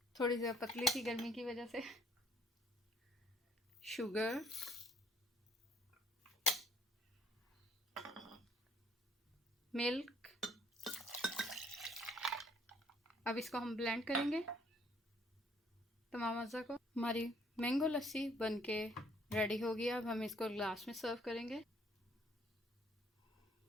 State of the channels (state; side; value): normal; both; correlation 0.63